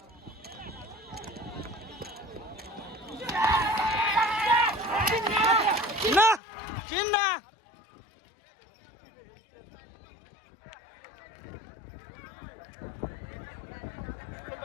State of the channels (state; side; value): drops out; right; at 6.4 s